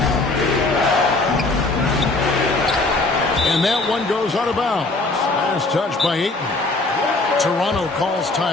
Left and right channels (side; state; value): right; quieter; 3.2 dB